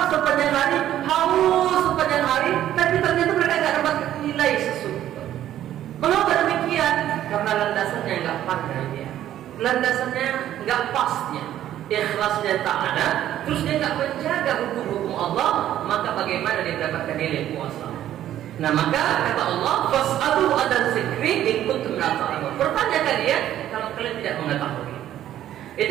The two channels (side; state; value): left; quieter; 12.0 dB